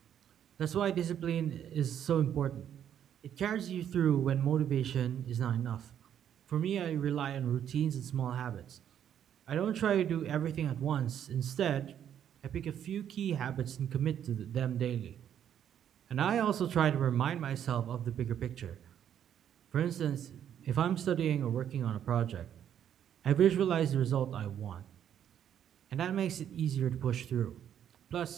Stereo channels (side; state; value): left; quieter; 9.7 dB